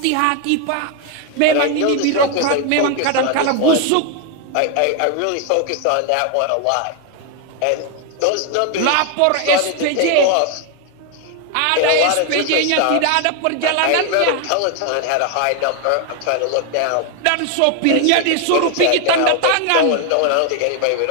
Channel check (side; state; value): both; different; correlation 0.01